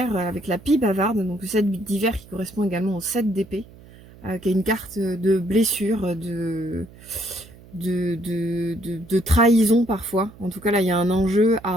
avec la pie bavarde, donc le 7 d'hiver qui correspond également au 7 d'épée, qui est une carte de blessure, de trahison parfois. En tout cas, là, il y a un enjeu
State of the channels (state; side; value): noise; right; hum, 22 dB below the sound